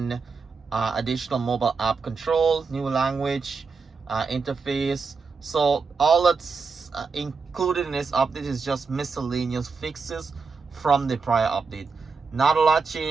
additional mobile app control, new language interface. So all that's included in this update is just miscellaneous fixes from the prior update. Not a lot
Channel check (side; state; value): left; quieter; 4.8 dB